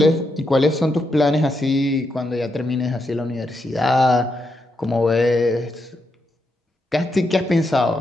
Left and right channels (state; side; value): normal; both; correlation 0.83